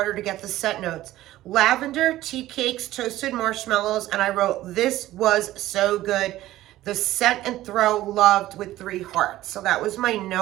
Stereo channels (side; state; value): left; quieter; 15.2 dB